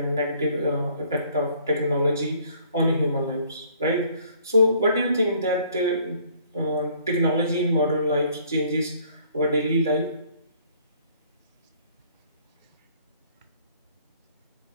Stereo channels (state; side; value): inverted; both; correlation -0.60